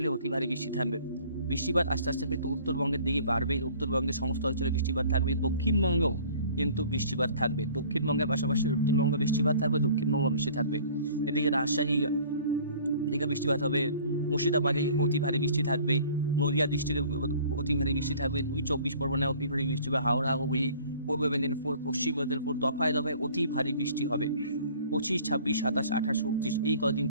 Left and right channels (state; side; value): inverted; both; correlation -0.50